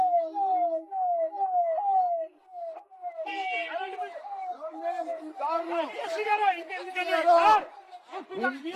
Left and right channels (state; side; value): identical; both; correlation 1.00